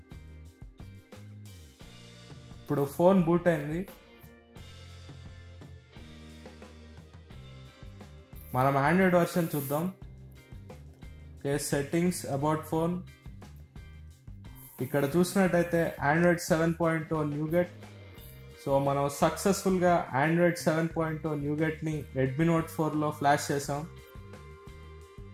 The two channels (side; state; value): both; identical; correlation 1.00